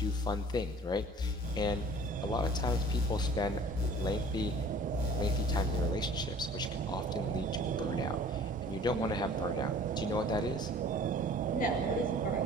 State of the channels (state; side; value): normal; both; correlation 0.48